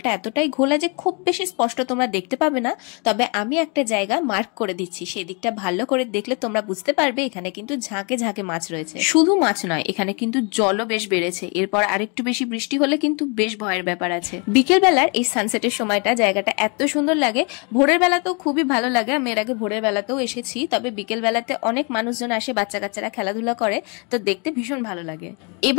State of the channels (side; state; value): right; quieter; 33.4 dB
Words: এতটাই ঘোলা যে খুব বেশি স্পষ্ট তোমরা দেখতে পাবে না। তবে আমি একটা জায়গা মার্ক করে দিচ্ছি, সেই দিকটা ভালো করে দেখলে তোমরা বুঝতে পারবে এখানে কিন্তু ঝাঁকে ঝাঁকে মাছ রয়েছে। শুধু মাছ নয়, এখানে কিন্তু জলও বেশ বেড়েছে। এরপর আরেকটু বেশি বৃষ্টি হলে কিন্তু বেশ ভয়ের ব্যাপার আছে। বিকেল বেলার এই সানসেটের সময়টা জায়গাটা এত সুন্দর লাগে। ভোরের বেলাতেও খুবই ভালো লাগে, আমি এর আগে ভোরের বেলাতেও এসেছি। তবে বিকেল বেলাতে অনেক মানুষজন আসে, বাচ্চা কাচ্চারা খেলাধুলা করে, তো দেখতে ভীষণ ভালো লাগে।